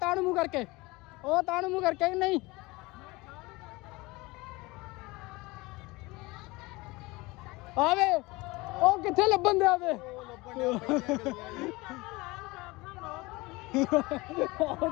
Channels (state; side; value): quieter; right; 22.6 dB